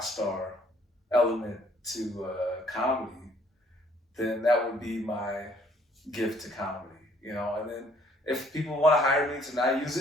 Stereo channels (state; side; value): normal; both; correlation 0.62